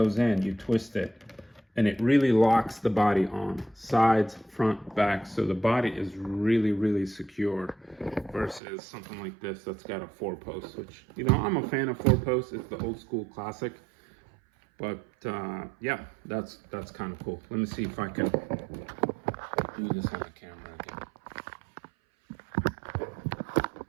in, you twist it, and it really locks the body on. Sides, front, back, so the body is really, really secure versus something like this that's got a 4-post, which, you know, I'm a fan of 4-posts. It's the old school classic. But yeah, that's kind of cool. Let me see if I can do this on the camera again.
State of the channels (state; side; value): drops out; left; at 8.6 s